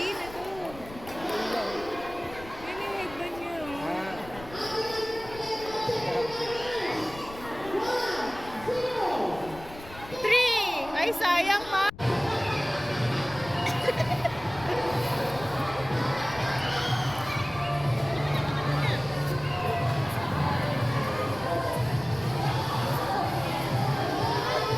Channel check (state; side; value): noise; left; rumble, 17 dB below the sound